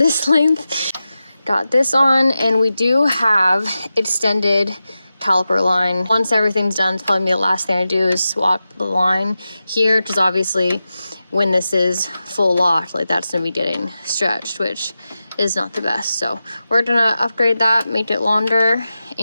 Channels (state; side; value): inverted; both; correlation -0.92